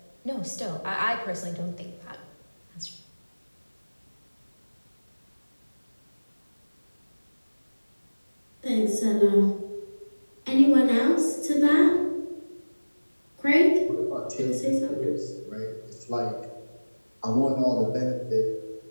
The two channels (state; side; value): inverted; both; correlation -1.00